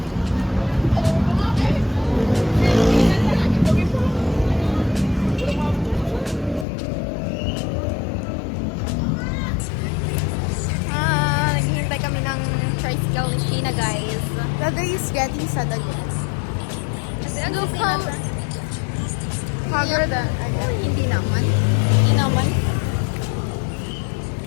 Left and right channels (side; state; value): right; drops out; at 6.7 s